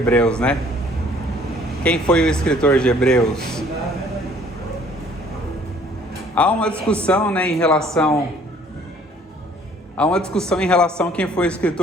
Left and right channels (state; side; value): normal; both; correlation 0.57